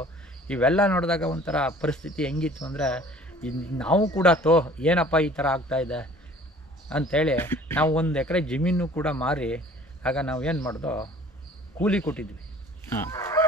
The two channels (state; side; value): normal; both; correlation 0.50